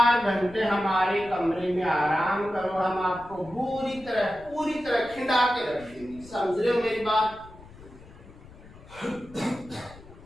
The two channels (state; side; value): noise; left; rumble, 20 dB below the sound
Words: घंटे हमारे कमरे में आराम करो, हम आपको पूरी तरह खिंडा के रख देंगे। समझ रहे हो मेरी बात?